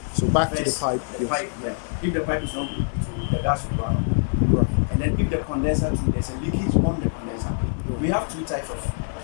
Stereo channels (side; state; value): right; silent; 62 dB below the other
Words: so back to the First, pipe. The pipe, yeah. If the pipe is not good, the gas will run out. Right. And then if the condenser too, there's a leakage on the condenser. We have 2 types of